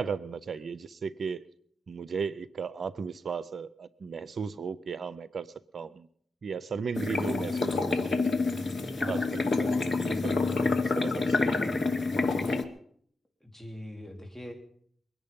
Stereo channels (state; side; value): normal; both; correlation 0.85